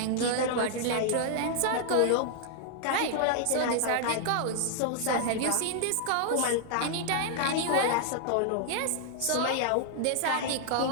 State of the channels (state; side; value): different; both; correlation 0.00